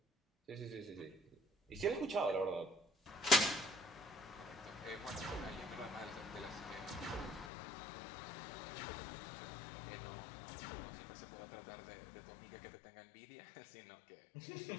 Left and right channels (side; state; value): right; drops out; at 7.5 s